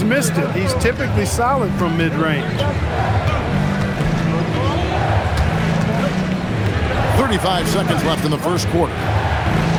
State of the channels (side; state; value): both; identical; correlation 1.00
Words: missed it. He's typically solid from mid-range. 35 seconds left in the first quarter.